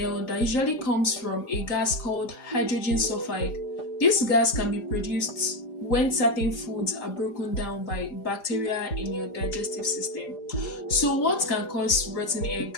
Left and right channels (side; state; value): right; late; 4.9 ms